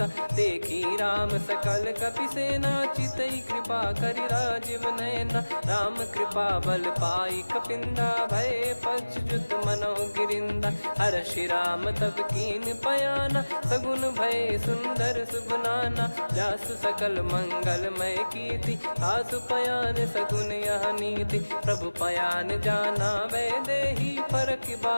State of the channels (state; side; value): inverted; both; correlation -1.00